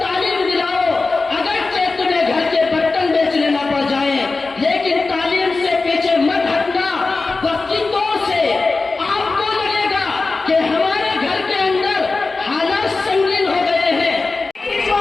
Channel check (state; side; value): quieter; right; 3.7 dB